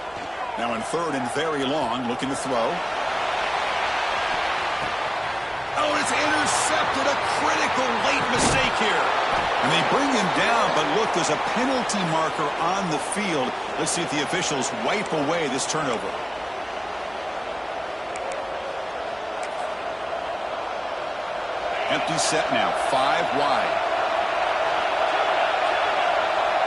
Now in third and very long, looking to throw. Oh, it's intercepted. A critical late mistake here. And they bring him down, but look, there's a penalty marker on the field. Let's see if the officials wipe away this turnover. Empty set now, 5 wide.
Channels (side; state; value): both; identical; correlation 1.00